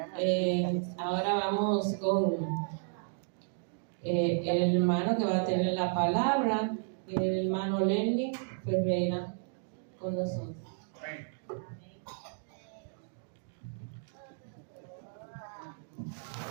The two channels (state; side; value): silent; left; digital silence